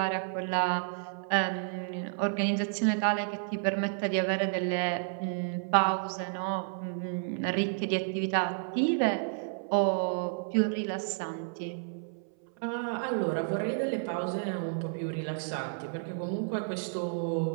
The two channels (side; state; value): left; silent; 57 dB below the other